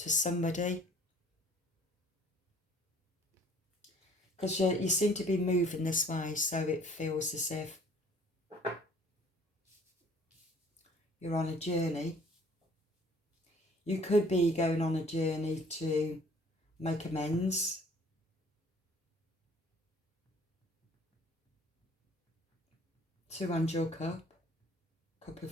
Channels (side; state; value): both; normal; correlation 0.55